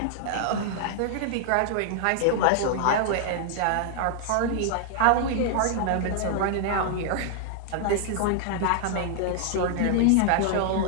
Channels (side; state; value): both; different; correlation -0.01